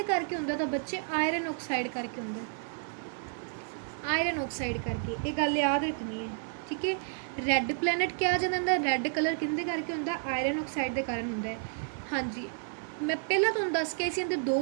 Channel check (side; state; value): left; silent; 57 dB below the other